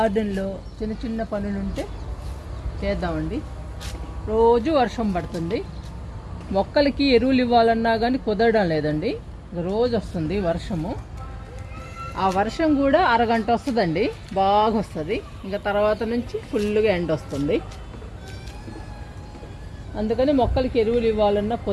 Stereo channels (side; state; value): both; identical; correlation 1.00